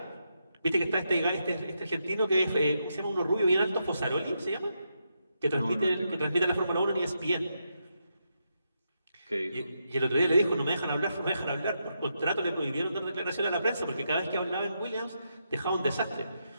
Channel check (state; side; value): inverted; both; correlation -0.82